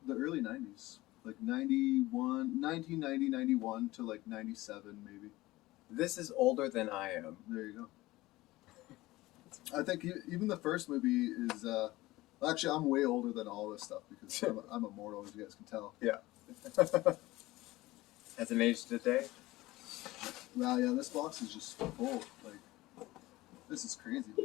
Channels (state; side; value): quieter; right; 18.7 dB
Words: the early 90s. Like 1990, 91 to like 97 maybe. This is older than I am. There you go. I think even the first movie is, actually I'm way older than all this stuff because I'm immortal, as you guys can tell. Yeah. Has an age today? Wow, yeah, this box is just full. Like, this is crazy.